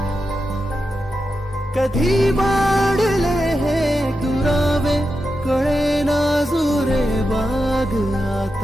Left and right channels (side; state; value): both; normal; correlation 0.89